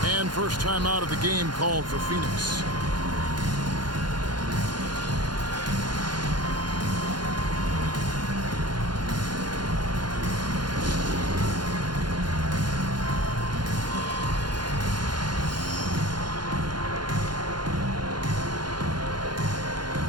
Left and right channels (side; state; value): left; late; 0.71 ms